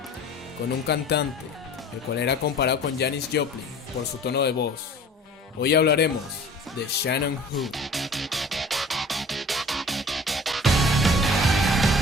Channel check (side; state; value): both; normal; correlation 0.45